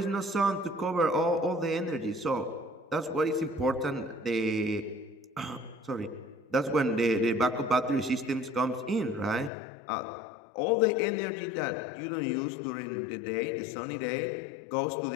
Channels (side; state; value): right; drops out; at 9.5 s